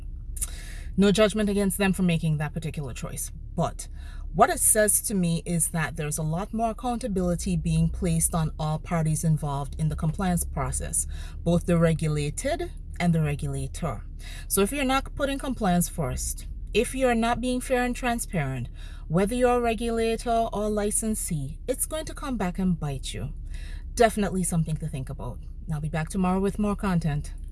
No judgment against them for making that particular choice. But what it says to me is that there's a lot more accountability being placed on all parties involved in the compliance process, both the regulated and the regulator. So if you're not putting compliance first, if you're not being fair and transparent, whether you're a regulator or licensee, it's going to come back and bite you. Definitely something to think about. I'll be back tomorrow with more content.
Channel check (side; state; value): both; identical; correlation 1.00